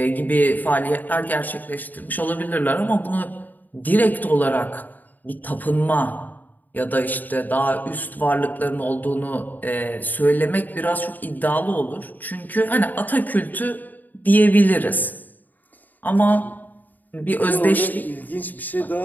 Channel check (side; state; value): right; late; 0.085 ms